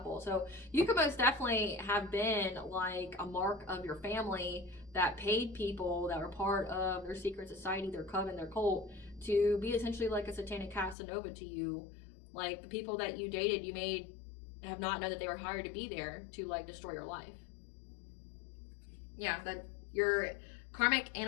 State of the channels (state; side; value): drops out; right; at 11.0 s